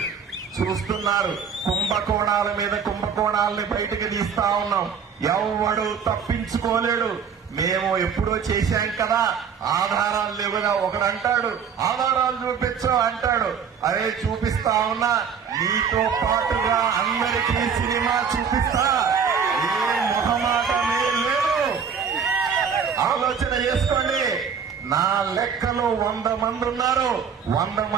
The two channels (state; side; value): quieter; left; 6.8 dB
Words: చూస్తున్నారు, కుంభకోణాల మీద కుంభకోణాలని బయటకు తీస్తా ఉన్నాం. ఎవడు తప్పించుకోలేడు. మేము ఎప్పుడో చేశాం కదా, ఆధారాలు లేవు కదా. ఒకడు అంటాడు ఆధారాలు చూపించు అంటాడు. అరే చూపిస్తా ఉన్నా, నీతో పాటుగా అందరికీ సినిమా చూపిస్తా. ఏ మొహమాటమే లేదు, ఆలోచన చేసుకోండి. నా లెక్కలో 100 మంది ఉన్నారు. 100